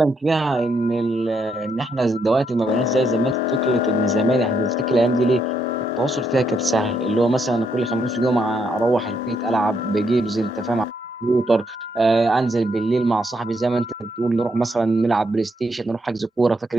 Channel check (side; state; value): both; normal; correlation 0.76